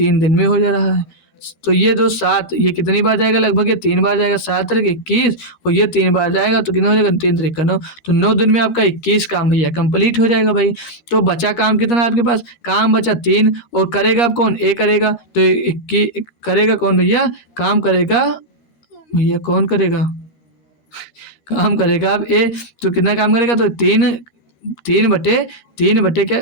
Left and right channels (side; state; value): right; late; 13 ms